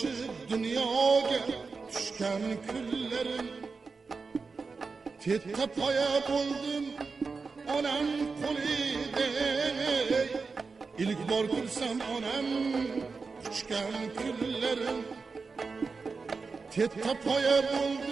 dunyoga tushgan kunlarim. Tetta poya bo'ldim onam qo'lida, ilk bor ko'rsam onam quchgan kunlarim. Tetta poya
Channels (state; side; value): quieter; left; 4.5 dB